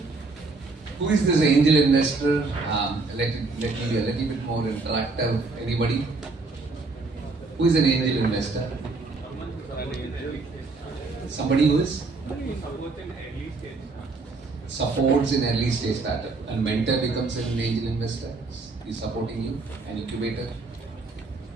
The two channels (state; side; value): quieter; left; 3.8 dB